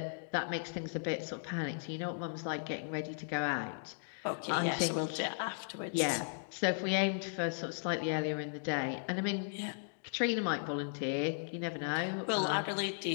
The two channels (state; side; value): silent; right; digital silence